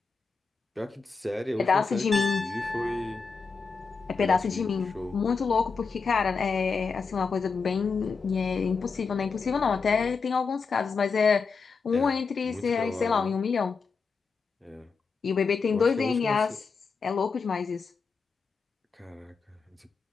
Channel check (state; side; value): quieter; right; 5.0 dB